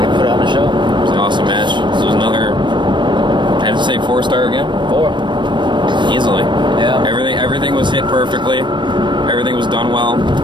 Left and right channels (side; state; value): left; late; 0.22 ms